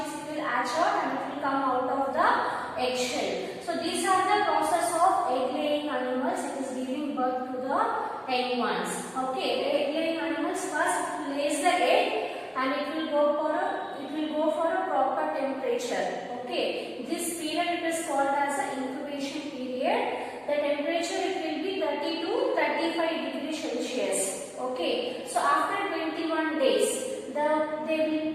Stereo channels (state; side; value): identical; both; correlation 1.00